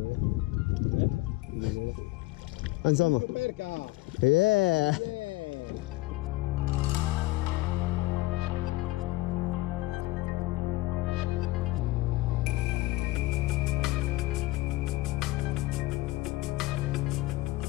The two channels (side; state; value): right; quieter; 19.6 dB